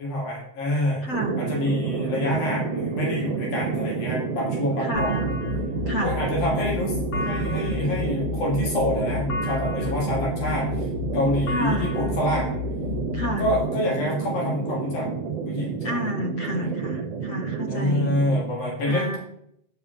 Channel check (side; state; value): right; late; 7.7 ms